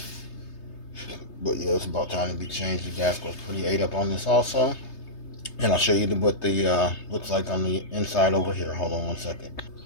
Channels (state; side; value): late; right; 3.3 ms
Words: But yeah, it's about time to be changed. The gasket was pretty ate up on this also, and I'll show you what the looks like on the inside over here. Hold on one second.